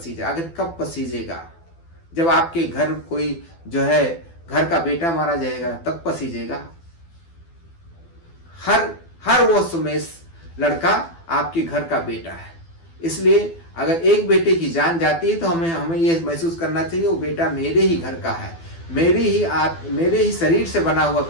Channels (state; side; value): late; right; 12 ms